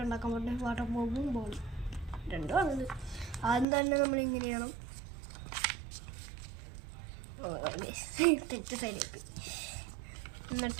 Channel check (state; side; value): drops out; left; at 3.7 s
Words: ഉണ്ടാക്കാൻ പറ്റുന്നത്? വാട്ടർ ബോംബും ബോളും രണ്ടും ആണത്. ആദ്യം തന്നെ നമ്മൾ ഇങ്ങനെ ചെയ്യണം. തെറ്റ് സൈഡിലേക്ക്